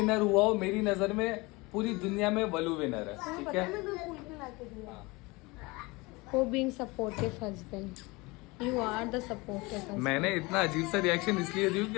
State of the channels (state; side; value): quieter; right; 24.3 dB